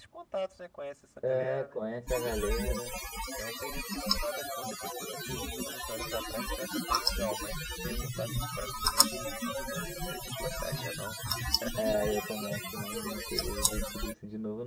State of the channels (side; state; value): both; identical; correlation 1.00